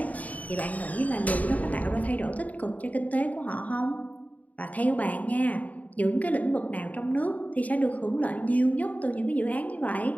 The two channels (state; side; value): late; right; 0.072 ms